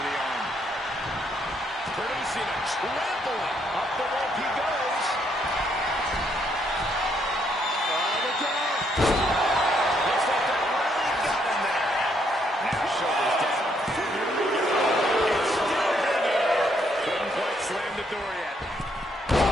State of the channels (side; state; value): both; normal; correlation 0.72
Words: the arm. Producing a trampling. Up the rope he goes. Oh, look out. Looks like that really got him there. Now shoulders down. It's still hanging. Couldn't quite slam the door yet.